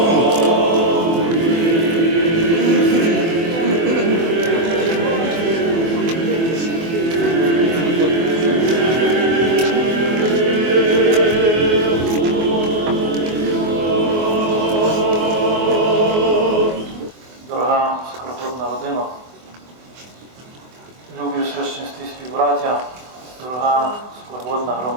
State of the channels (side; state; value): left; late; 24 ms